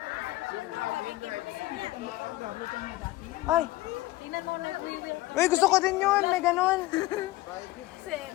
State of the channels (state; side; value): quieter; right; 18.1 dB